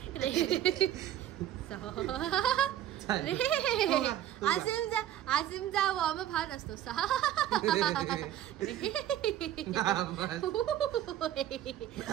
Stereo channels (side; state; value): left; quieter; 12.0 dB